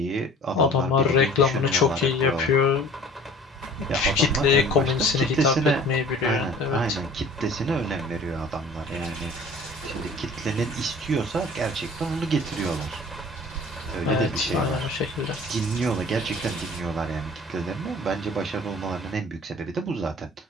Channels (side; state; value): both; normal; correlation 0.47